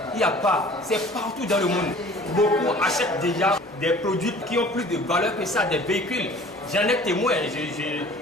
il n'y a pas. C'est partout dans le monde. Beaucoup achètent déjà des produits qui ont plus de valeur que ça, des véhicules. J'en ai témoin,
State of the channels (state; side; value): normal; both; correlation 0.47